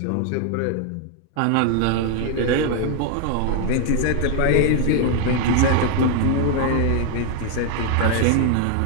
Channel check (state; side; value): different; both; correlation 0.00